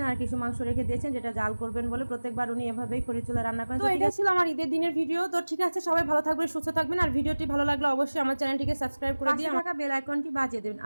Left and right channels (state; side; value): inverted; both; correlation -1.00